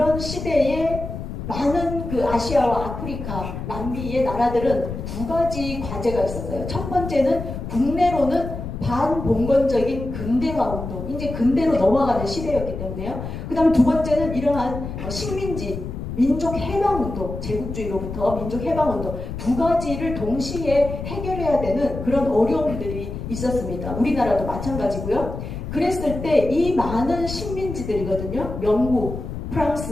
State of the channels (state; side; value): noise; left; rumble, 7 dB below the sound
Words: 시대에 많은 그 아시아와 아프리카, 남미의 나라들은 두 가지 과제가 있었어요. 첫 번째는 국내로는 반봉건적인 근대화 운동, 이제 근대로 넘어가는 시대였기 때문에요. 그 다음에 두 번째는 이러한 식민지, 민족 해방 운동, 제국주의로부터 민족 해방 운동 두 가지를 동시에 해결해야 되는 그런 어려움들이 있었습니다. 우리나라도 마찬가지고요. 그랬을 때 이 많은 식민지들이거든요. 영국,